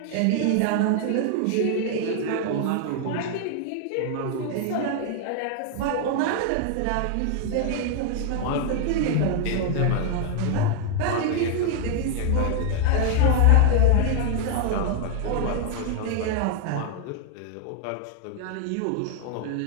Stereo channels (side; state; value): both; different; correlation 0.00